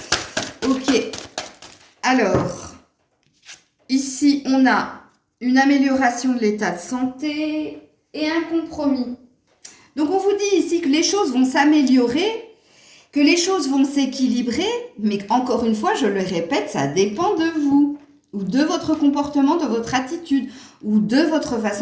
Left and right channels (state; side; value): identical; both; correlation 1.00